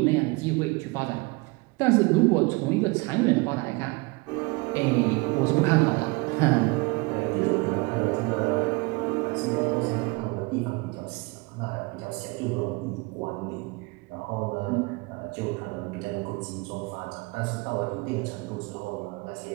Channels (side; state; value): left; quieter; 26.3 dB